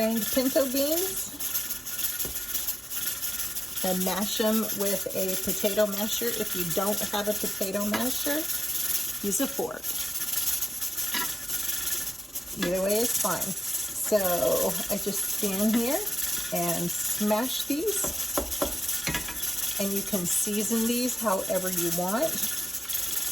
pinto beans. And mash them with a potato masher. If you don't have a potato masher, use a fork. Either way is fine. So I just stand here and smash these. And you can season these however you want,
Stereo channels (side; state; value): both; normal; correlation 0.93